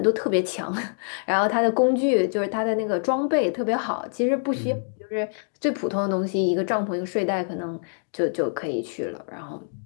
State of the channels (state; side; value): silent; right; digital silence